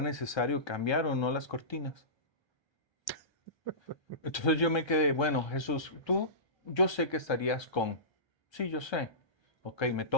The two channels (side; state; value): right; late; 1.3 ms